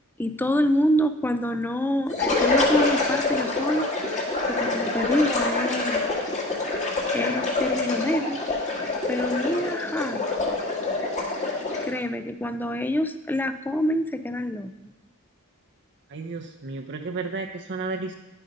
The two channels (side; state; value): both; normal; correlation 0.45